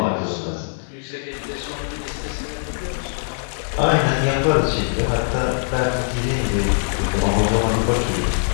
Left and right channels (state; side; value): silent; right; digital silence